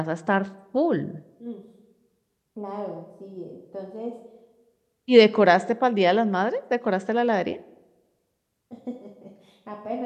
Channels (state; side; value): identical; both; correlation 1.00